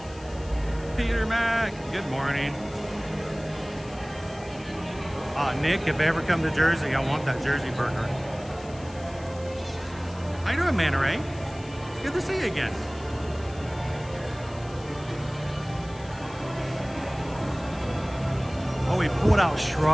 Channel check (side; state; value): left; noise; hiss, 22 dB below the sound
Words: Peter Mac, good morning. Nick, if I ever come to Jersey, I want that Jersey burger. How you doing, Manta Ray? Good to see you again. Oh, we pulled out